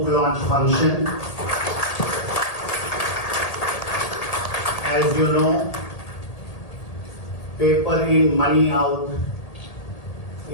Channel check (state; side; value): late; right; 1.8 ms